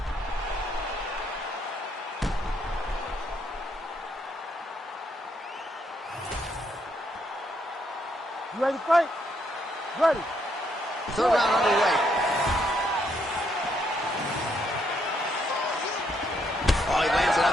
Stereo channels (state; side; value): normal; both; correlation 0.74